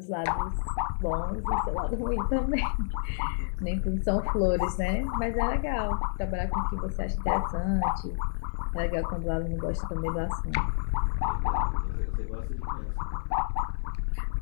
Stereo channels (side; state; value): right; silent; 58 dB below the other